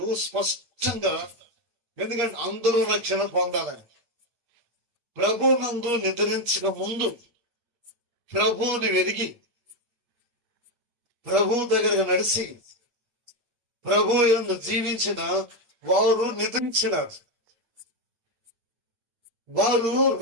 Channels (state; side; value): late; left; 8.3 ms